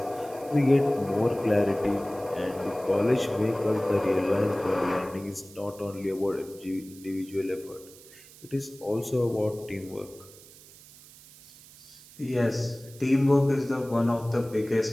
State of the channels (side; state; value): right; noise; hiss, 21 dB below the sound